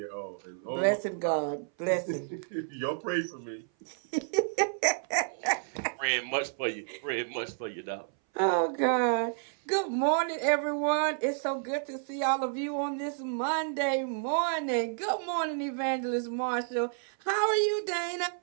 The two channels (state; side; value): silent; left; 57 dB below the other